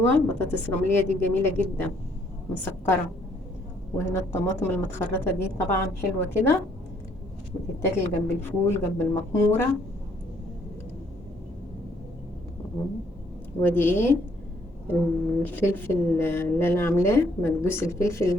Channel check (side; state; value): both; normal; correlation 0.67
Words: بطاطس رملية دي جميلة جدا مسكرة. وهنا الطماطم المتخرطة دي طبعا حلوة كده، بتتاكل جنب الفول جنب المكمورة. ودي ايه؟ الفلفل اللي انا عاملاه مكبوس الفلفل